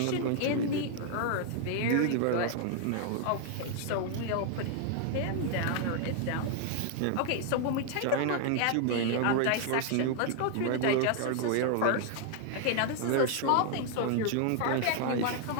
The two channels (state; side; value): different; both; correlation 0.00